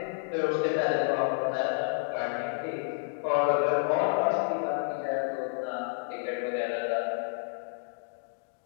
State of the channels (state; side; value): silent; right; 56 dB below the other